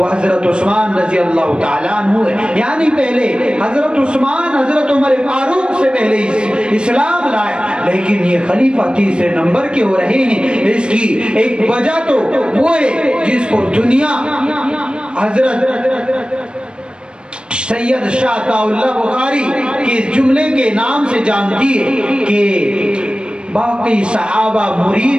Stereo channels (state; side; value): late; left; 0.054 ms